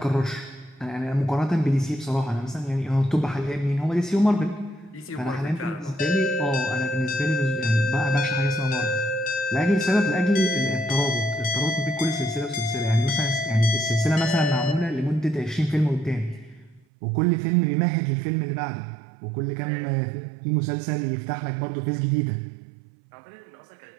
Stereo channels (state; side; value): drops out; left; at 16.9 s